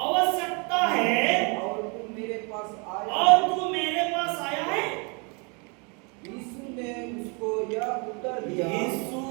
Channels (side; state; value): left; quieter; 33.4 dB